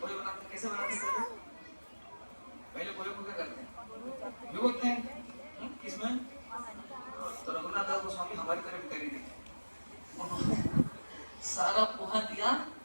पोहे बनाते कैसे बनाते हैं, पहले पोहे को क्या करते हैं, भिगोते हैं किसमें, तो रघुनाथ दास गोस्वामी हमारी तरफ करी नहीं, उन्होंने सारा पोहा दिया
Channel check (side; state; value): both; inverted; correlation -1.00